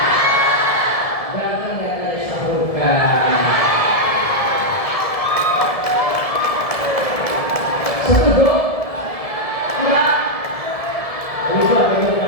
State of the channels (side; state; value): right; late; 1.7 ms